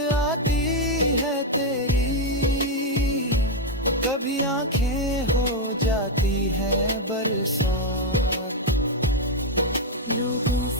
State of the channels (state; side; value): normal; both; correlation 0.02